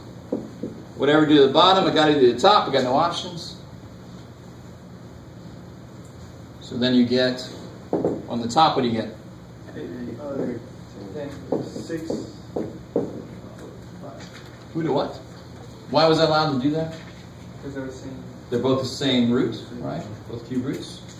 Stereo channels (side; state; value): both; identical; correlation 1.00